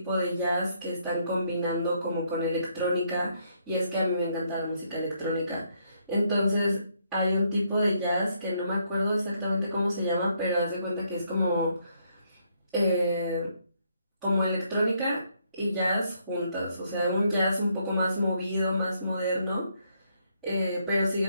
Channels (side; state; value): both; inverted; correlation -0.73